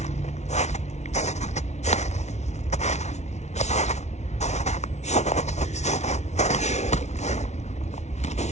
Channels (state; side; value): late; right; 0.32 ms